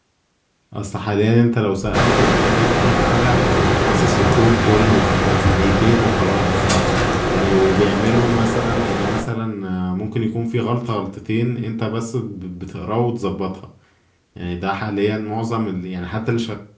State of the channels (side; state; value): both; identical; correlation 1.00